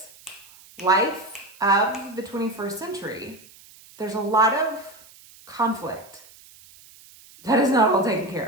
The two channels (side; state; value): right; noise; hiss, 23 dB below the sound